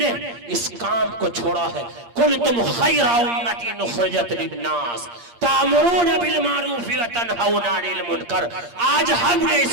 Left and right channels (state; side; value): late; left; 8.6 ms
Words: इस काम को छोड़ा है। कुंतुम खैरा उम्मतिन उखरिजत लिन्नास तामुरून बिल मारूफ व तनहौना अनिल मुनकर। आज हमने